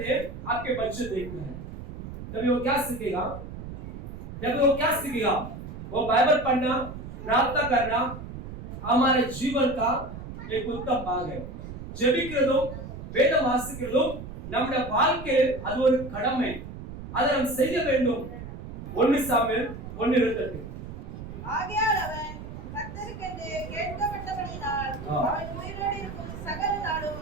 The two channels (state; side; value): noise; right; rumble, 10 dB below the sound